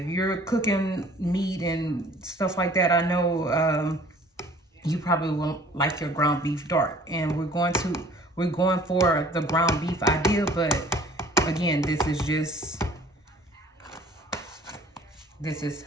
you're cooking meat and stuff like that, I know you probably won't like your ground beef dark. And we're going for the ground beef idea, but again, this is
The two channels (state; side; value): normal; both; correlation 0.52